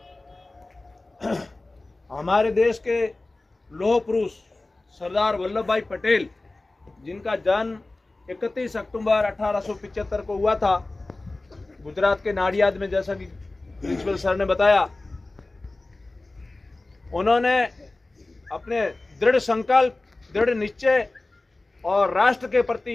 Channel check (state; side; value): quieter; right; 3.0 dB